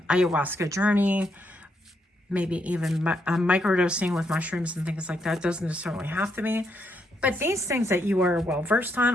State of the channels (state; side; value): normal; both; correlation 0.77